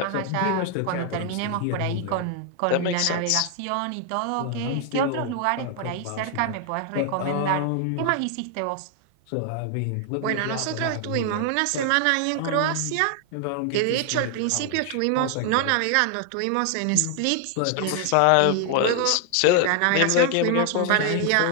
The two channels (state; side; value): different; both; correlation 0.00